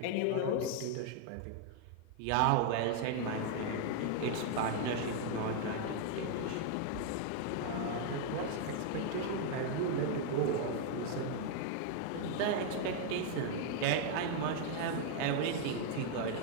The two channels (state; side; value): different; both; correlation 0.00